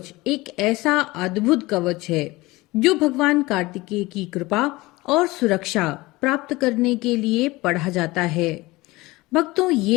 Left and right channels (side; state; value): right; quieter; 20.9 dB